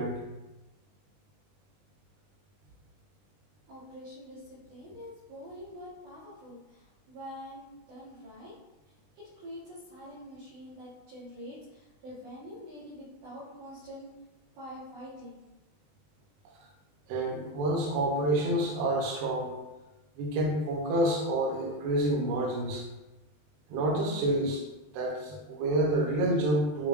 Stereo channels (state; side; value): late; left; 20 ms